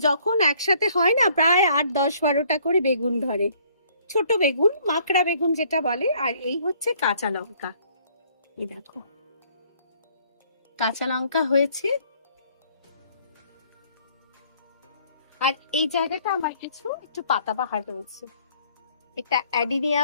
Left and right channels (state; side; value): inverted; both; correlation -0.61